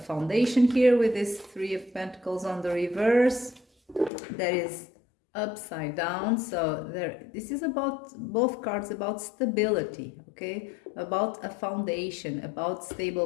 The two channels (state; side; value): drops out; right; at 4.1 s